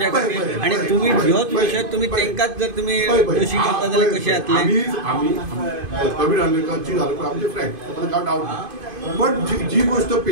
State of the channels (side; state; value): left; late; 2.5 ms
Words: खातीर आणि तुम्ही ह्योच विशय तुम्ही तांकांच जर तुम्ही दोशी करता जाल्यार कशें जातलें. प्रवीण आल्लेकर आमचे फ्रेंड काय डावट ना. पण जी गोष्ट